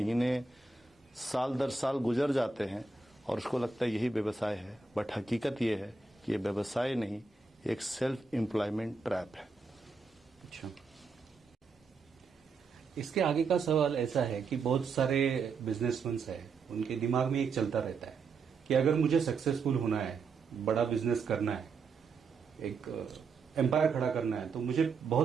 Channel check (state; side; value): quieter; left; 4.5 dB